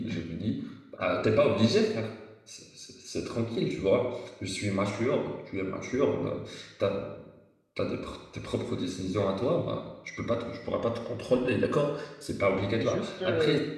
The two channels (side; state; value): both; identical; correlation 1.00